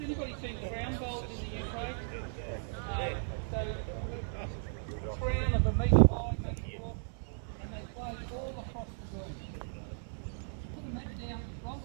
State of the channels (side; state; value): left; silent; 54 dB below the other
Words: anybody seen crown bowls in the UK? So, crown of a metre high, maybe more, and they play all across the green. Put the mat down, roll